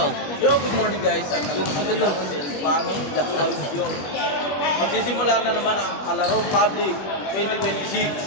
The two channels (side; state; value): right; late; 21 ms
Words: Yo, good morning guys. At ako ng Ilbano, the audio. Magsisimula na naman ang Kalaro Public 2026.